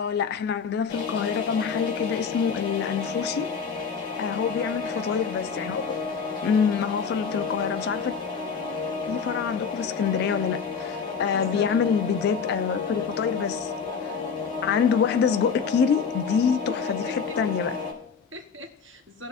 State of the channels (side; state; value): right; quieter; 6.1 dB